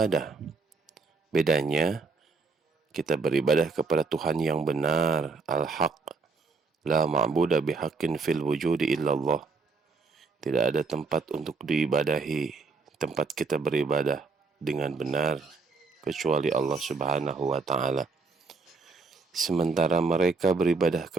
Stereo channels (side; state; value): left; quieter; 4.2 dB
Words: Bedanya, kita beribadah kepada Tuhan yang benar, al-haq. La ma'buda bihaqqin fil wujudi illallah. Tidak ada tempat untuk diibadahi, tempat kita beribadah dengan benar, kecuali Allah Subhanahu wa Ta'ala. Sementara mereka beribadah